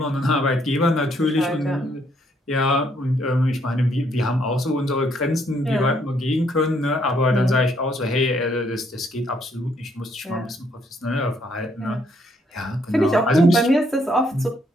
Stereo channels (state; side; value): normal; both; correlation 0.70